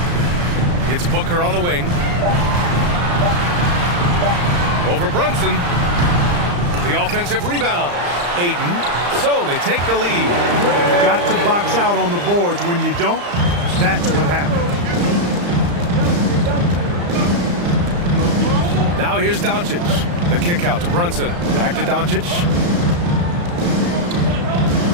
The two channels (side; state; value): left; late; 35 ms